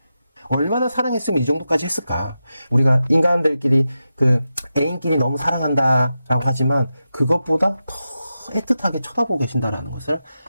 얼마나 사랑했으면 이 정도까지 했을까. 우리가 인간들끼리 애인끼리 너무 사랑한다라고 하지만 그것보다 더 애틋하게 쳐다보고 계신다라는 것을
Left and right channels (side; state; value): both; inverted; correlation -0.90